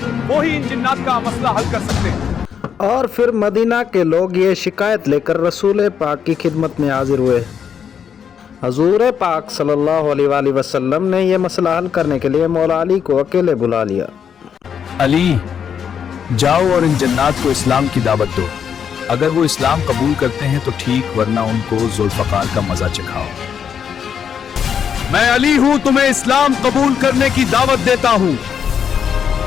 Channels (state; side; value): quieter; right; 7.7 dB